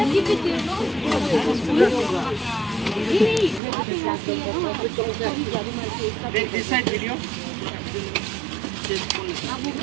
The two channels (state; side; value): drops out; left; at 3.6 s